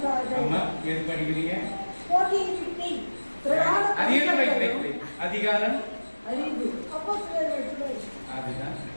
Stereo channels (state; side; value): inverted; both; correlation -1.00